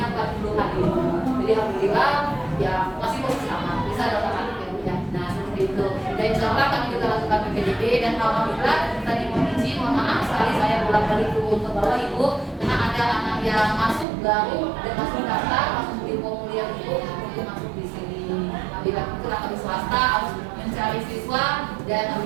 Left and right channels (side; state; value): left; drops out; at 14.1 s